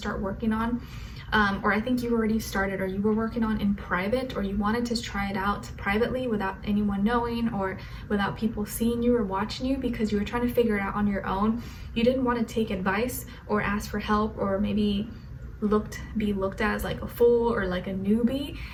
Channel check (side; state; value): both; identical; correlation 1.00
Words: working on, or I think you already started, or you were working on in private, or you wanted to try it out privately without anyone knowing, or without people seeing you or watching you, because you were trying to figure it out on your own. You didn't want to take advice or ask for help, or maybe be looked at as like a fool or like a newbie,